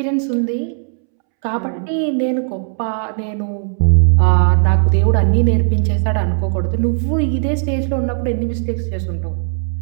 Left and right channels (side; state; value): left; silent; 68 dB below the other